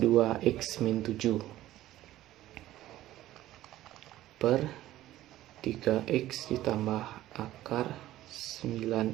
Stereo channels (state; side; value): quieter; left; 14.7 dB